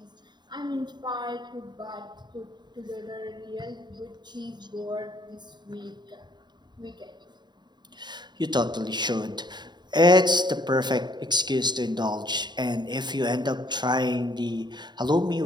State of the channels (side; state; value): left; late; 0.21 ms